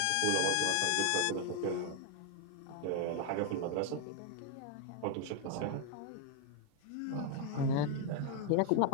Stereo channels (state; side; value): different; both; correlation 0.01